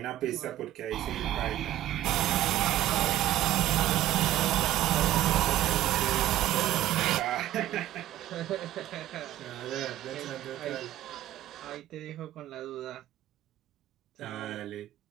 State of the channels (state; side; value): quieter; left; 13.8 dB